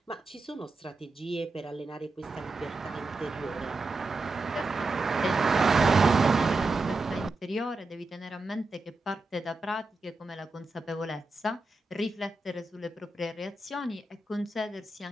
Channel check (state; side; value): quieter; left; 3.2 dB